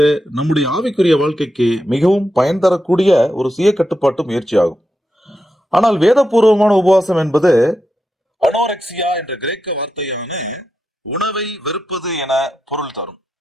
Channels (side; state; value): both; normal; correlation 0.87